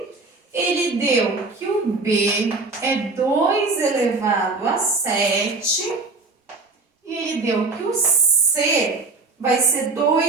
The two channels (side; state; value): left; quieter; 3.7 dB